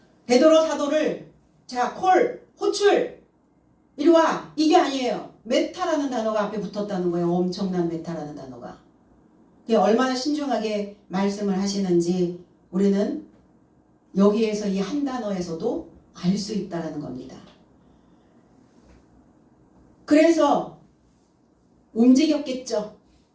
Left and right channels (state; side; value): identical; both; correlation 1.00